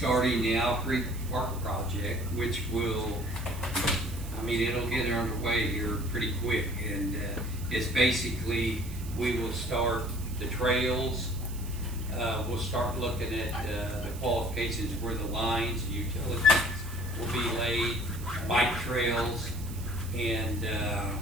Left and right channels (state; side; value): noise; right; hiss, 16 dB below the sound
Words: the Owl Creek Park project, which will, it'll get underway here pretty quick. And it's basically, we will start the trails, we'll start looking at the qualifications where the lines, utilities will be laid, bike trails, and